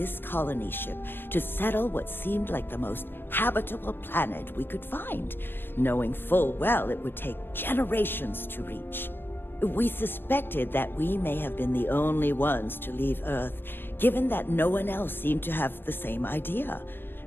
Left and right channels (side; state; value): right; late; 0.098 ms